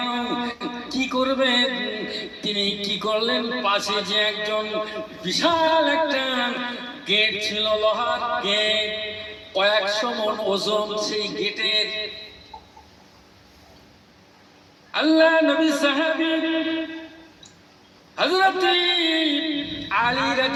কি করবেন? তিনি কি করলেন? পাশে যে একজন বিশাল একটা গেট ছিল, লোহার গেট, কয়েকশো মণ ওজন সেই গেটের। আল্লাহ নবী সাহাবী হযরত আলী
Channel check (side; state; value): both; identical; correlation 1.00